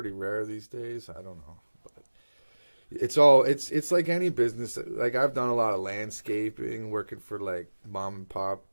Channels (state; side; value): inverted; both; correlation -1.00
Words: rare these days. I don't know. It's like any business. Like I've done a lot of landscaping, working for like mom and pop